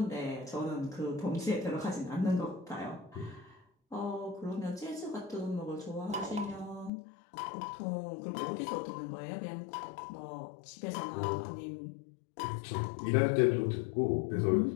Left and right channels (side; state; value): right; drops out; at 6.9 s